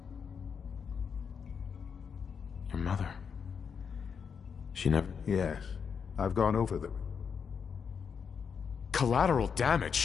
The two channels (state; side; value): quieter; right; 6.5 dB